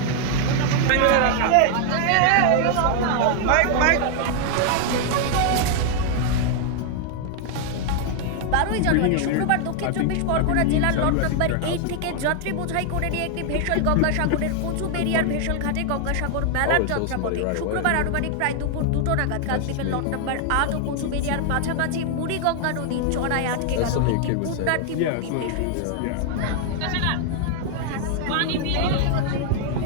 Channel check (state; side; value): different; both; correlation 0.00